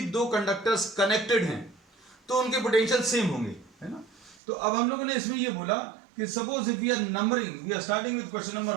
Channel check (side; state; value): left; drops out; at 4.4 s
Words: दो कंडक्टर्स कनेक्टेड हैं तो उनके पोटेंशियल सेम होंगे, है ना। तो अब हम लोगों ने इसमें ये बोला कि suppose if we are numbering, we are starting with question number